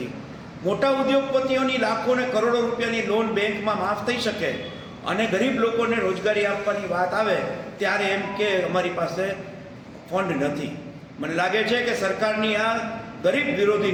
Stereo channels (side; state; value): both; identical; correlation 1.00